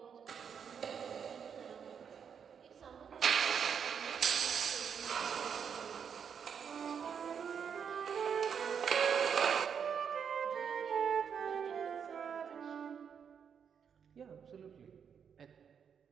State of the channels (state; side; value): quieter; left; 7.2 dB